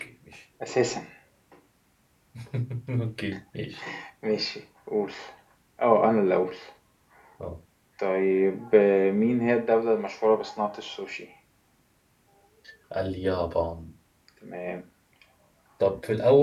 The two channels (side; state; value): both; identical; correlation 1.00